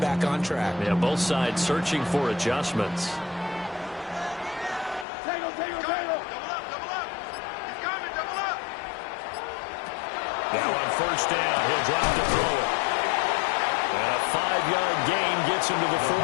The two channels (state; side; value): drops out; right; at 5.1 s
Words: on track? Yeah, both sides searching for adjustments. Now on first down, he'll drop to throw it. And a 5-yard gain gets him to the